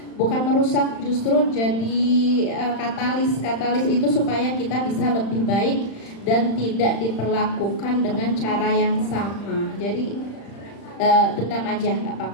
bukan merusak, justru jadi katalis. Katalis itu supaya kita bisa lebih baik dan tidak diperlakukan dengan cara yang sama. Jadi dendam aja, nggak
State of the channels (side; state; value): right; late; 35 ms